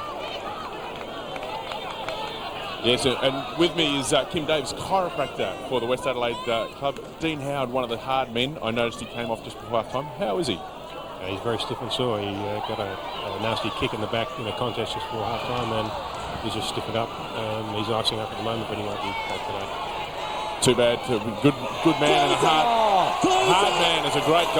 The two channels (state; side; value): identical; both; correlation 1.00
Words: Yes, and with me is Kim Davis, chiropractor for the West Adelaide club. Dean Howard, one of the hard men. I noticed he came off just before half time. How is he? He's very stiff and sore. He got a nasty kick in the back in a contest just before half time, and he's just stiffened up. He's icing up at the moment, but he won't be back today. Too bad. Good man and a hard man. It's a great